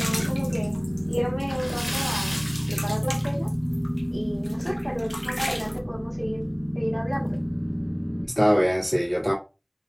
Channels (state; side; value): identical; both; correlation 1.00